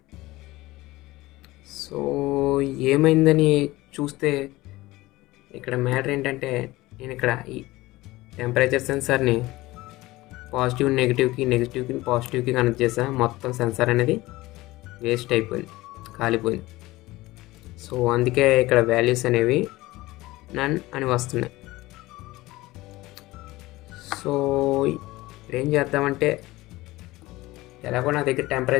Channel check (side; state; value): right; quieter; 19.1 dB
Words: సో ఏమైందని చూస్తే ఇక్కడ మ్యాటర్ ఏంటంటే, నేను ఇక్కడ ఈ టెంపరేచర్ సెన్సార్ని పాజిటివ్ నెగిటివ్కి పాజిటివ్కి కనెక్ట్ చేసాను. మొత్తం సెన్సార్ అనేది వేస్ట్ అయిపోయింది, కాలిపోయింది. సో అందుకే ఇక్కడ వాల్యూస్ అనేవి నన్ అని వస్తున్నాయి. సో ఇప్పుడు ఏం చేద్దామంటే, ఎలాగో నా దగ్గర